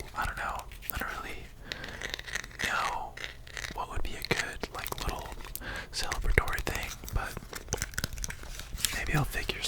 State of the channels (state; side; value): identical; both; correlation 1.00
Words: I don't know. I don't really know what would be a good, like, little celebratory thing, but maybe I'll figure